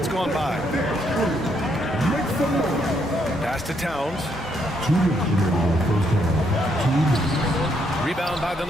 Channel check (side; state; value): both; normal; correlation 0.74